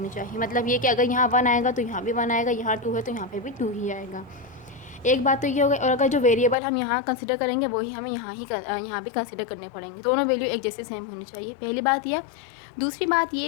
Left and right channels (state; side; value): drops out; right; at 6.6 s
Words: चाहिए। मतलब ये कि अगर यहाँ 1 आएगा तो यहाँ भी 1 आएगा, यहाँ 2 है तो यहाँ पे भी 2 ही आएगा। एक बात तो ये हो गई। और अगर जो वेरिएबल हम यहाँ कंसिडर करेंगे वही हमें यहाँ भी कंसिडर करने पड़ेंगे। दोनों वैल्यू एक जैसे सेम होनी चाहिए, पहली बात ये। दूसरी बात ये